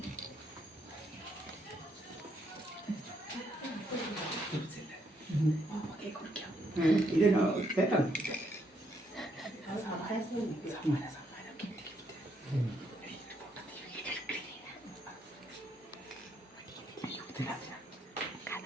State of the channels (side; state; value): both; normal; correlation 0.74